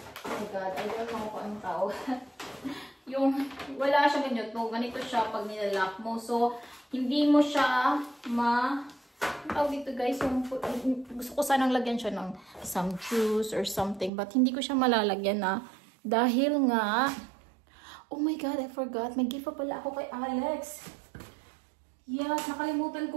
oh my god, I don't know kung anong tawag. yung wala siya ganyan to. Ganito siya pag nilalak mo. So, hindi mo siya tawag dito guys, yung, gusto ko sanang lagyan siya ng some juice or something. But hindi ko siya malalagyan na dahil nga, oh my god, I forgot. May gift pa pala ako kay Alex. Yeah, nakalimutan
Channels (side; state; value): left; drops out; at 14.1 s